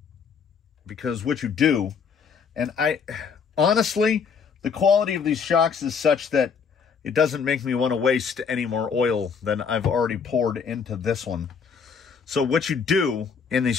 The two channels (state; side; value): quieter; right; 6.1 dB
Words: Because what you do, and honestly, the quality of these shocks is such that it doesn't make me want to waste any more oil than I've already poured into this one. So what you do in these